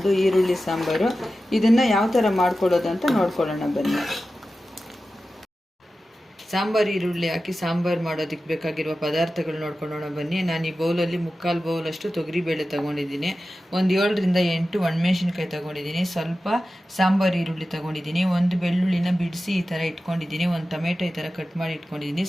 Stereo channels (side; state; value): both; normal; correlation 0.94